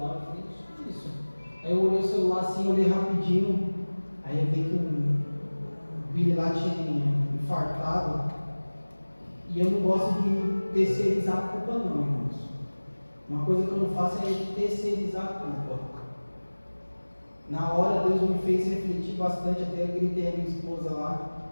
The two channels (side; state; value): both; inverted; correlation -1.00